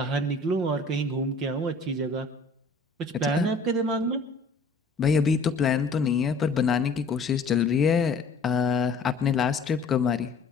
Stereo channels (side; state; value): right; quieter; 3.5 dB